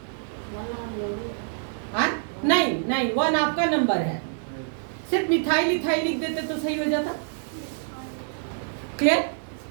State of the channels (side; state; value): left; silent; 61 dB below the other